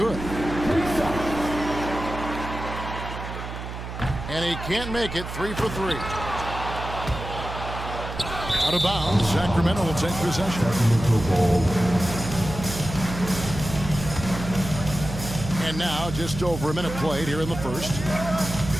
And he can't make it, 3 for 3. Out of bounds, Sacramento will take possession. And now, just over a minute played here in the first.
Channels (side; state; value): right; noise; hum, 8 dB below the sound